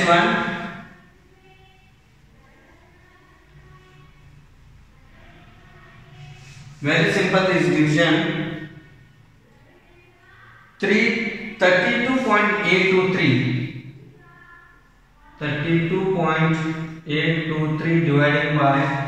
Very simple is division. 32.823. 32.823 dividing by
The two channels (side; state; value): both; identical; correlation 1.00